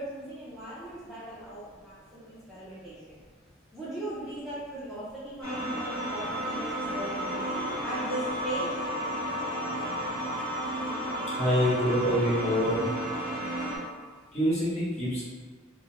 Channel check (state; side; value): normal; both; correlation 0.38